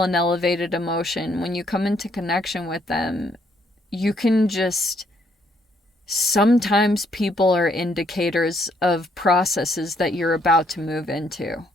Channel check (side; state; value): both; normal; correlation 0.70